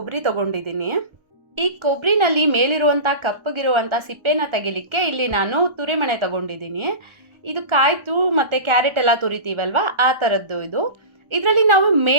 ತೊಗೊಂಡಿದ್ದೀನಿ. ಈ ಕೊಬ್ಬರಿನಲ್ಲಿ ಮೇಲಿರುವಂಥ ಕಪ್ಪಗಿರುವಂಥ ಸಿಪ್ಪೆನ ತೆಗಿಲಿಕ್ಕೆ ಇಲ್ಲಿ ನಾನು ತುರಿಮಣೆ ತೊಗೊಂಡಿದ್ದೀನಿ. ಇದು ಕಾಯ್ತು ಮತ್ತು ಕ್ಯಾರೆಟ್ ಎಲ್ಲ ತುರಿತೀವಲ್ವ, ಆ ಥರದ್ದು ಇದು. ಇದರಲ್ಲಿ ನಾವು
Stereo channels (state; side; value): late; left; 1.2 ms